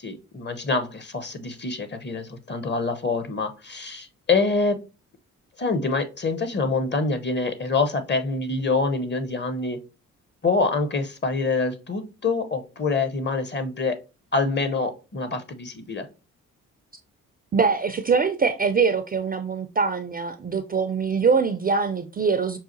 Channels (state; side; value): normal; both; correlation 0.19